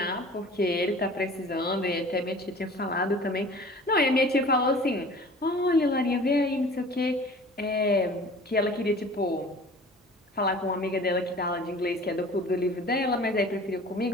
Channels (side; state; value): both; normal; correlation 0.44